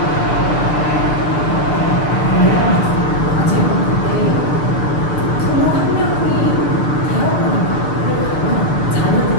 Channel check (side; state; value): right; late; 6.7 ms